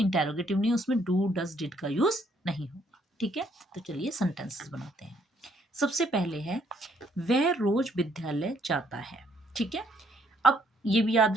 नहीं है, उसमें डू, डज, डिड का यूज नहीं होगा। ठीक है, तो चलिए सेंटेंसेस बनाते हैं। सबसे पहले है वह रोज विद्यालय जाता है। ठीक है, अब ये भी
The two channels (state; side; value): normal; both; correlation 0.68